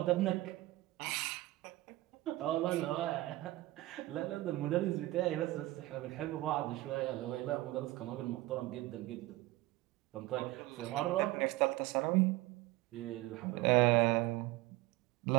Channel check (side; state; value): left; quieter; 18.4 dB